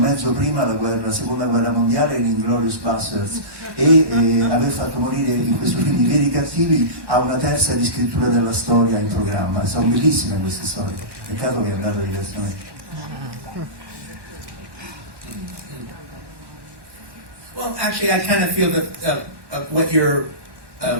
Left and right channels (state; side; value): late; left; 1.1 ms